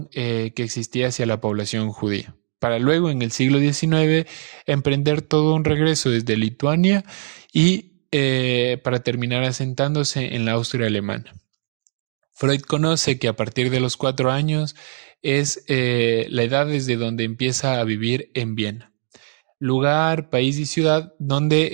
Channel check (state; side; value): silent; left; digital silence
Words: que existía hacia la población judía, para luego en el siglo XIX emprender todo un regreso desde Lituania y para terminar asentándose en la Austria alemana. Freud conoce que a partir de los 4 años es la edad desde donde empieza a vivir en Viena, lugar, país y ciudad